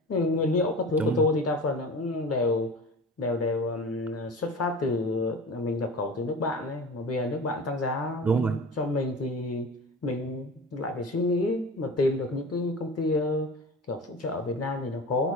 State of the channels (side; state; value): both; normal; correlation 0.34